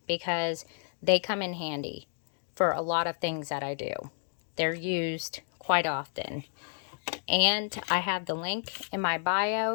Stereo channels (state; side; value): silent; right; digital silence